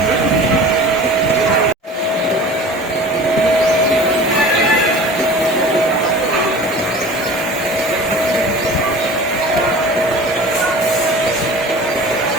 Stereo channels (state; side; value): normal; both; correlation 0.40